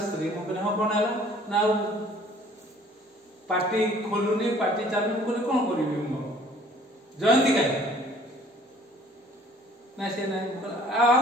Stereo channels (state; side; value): normal; both; correlation 0.55